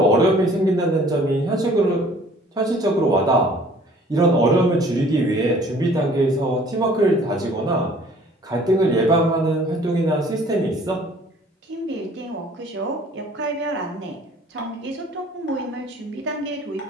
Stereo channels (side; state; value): both; normal; correlation 0.54